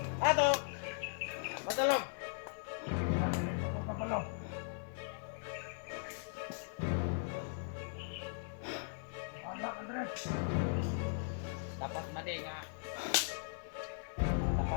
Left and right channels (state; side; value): silent; right; digital silence